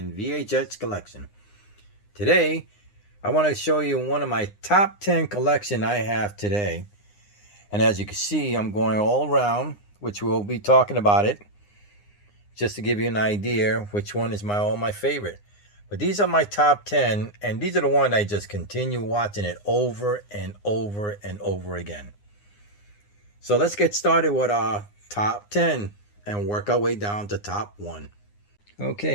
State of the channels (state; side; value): late; right; 9.7 ms